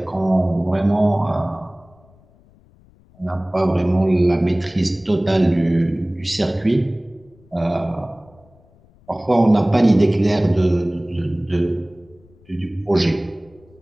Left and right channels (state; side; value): noise; left; rumble, 30 dB below the sound